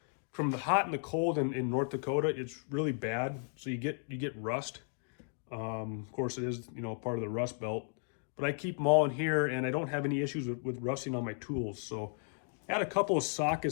the hot and the cold in North Dakota. It's really bad, so you get rust. Of course, it is part of the rust belt, but I keep them all in here, and I don't have any issues with rusting on my tools. So I had a couple of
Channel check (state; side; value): silent; right; 55 dB below the other